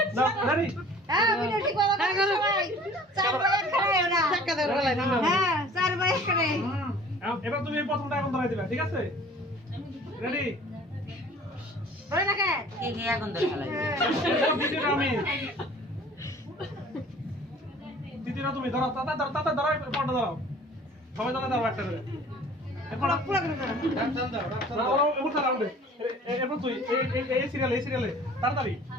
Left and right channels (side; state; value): both; normal; correlation 0.48